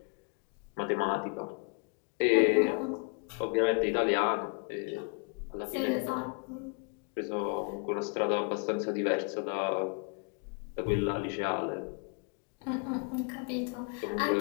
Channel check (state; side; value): quieter; right; 38.4 dB